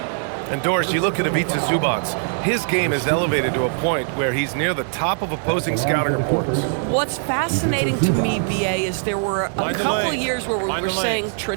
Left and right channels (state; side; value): silent; left; digital silence